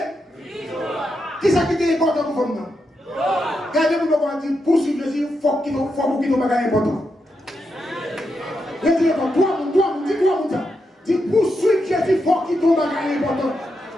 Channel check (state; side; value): normal; both; correlation 0.85